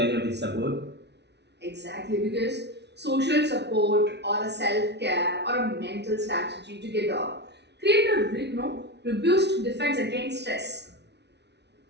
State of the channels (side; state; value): left; late; 0.50 ms